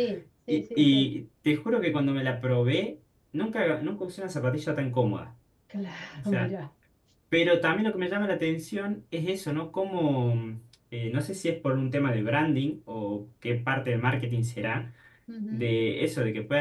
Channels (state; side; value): identical; both; correlation 1.00